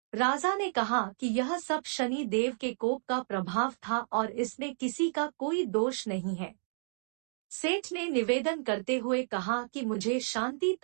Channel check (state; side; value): silent; left; digital silence